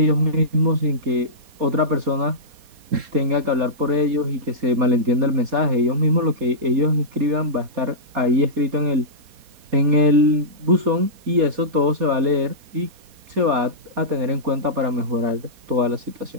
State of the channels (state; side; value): late; left; 4.2 ms